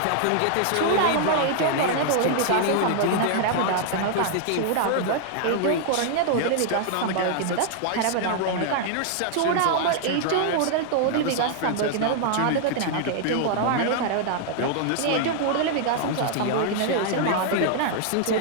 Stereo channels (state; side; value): different; both; correlation -0.01